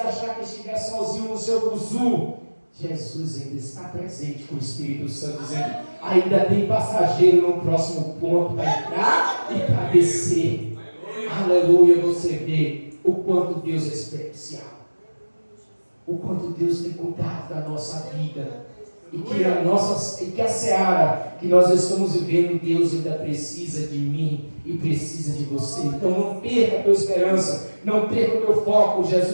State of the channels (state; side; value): inverted; both; correlation -1.00